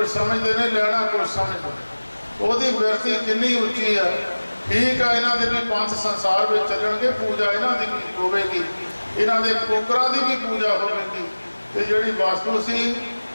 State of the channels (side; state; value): both; inverted; correlation -1.00